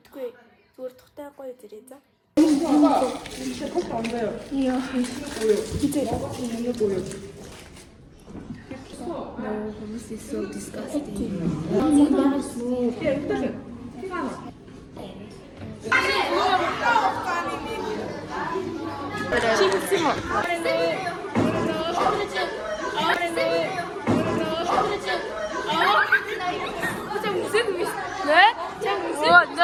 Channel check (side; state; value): both; identical; correlation 1.00